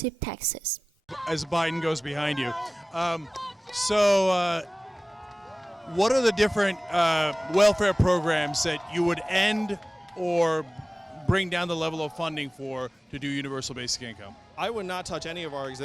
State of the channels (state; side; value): normal; both; correlation 0.98